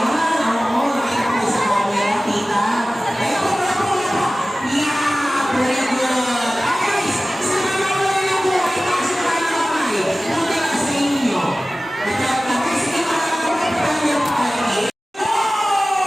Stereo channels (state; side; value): normal; both; correlation 0.97